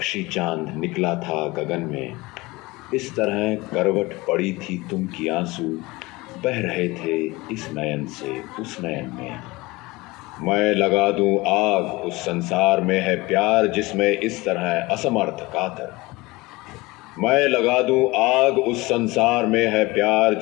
चांद निकला था गगन में, इस तरह करवट पड़ी थी तुम की आंसू, बह रहे थे इस नयन से उस नयन में। मैं लगा दूं आग उस संसार में है प्यार जिसमें इस तरह असमर्थ कातर। मैं लगा दूं आग उस संसार में है प्यार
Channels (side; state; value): right; quieter; 22.0 dB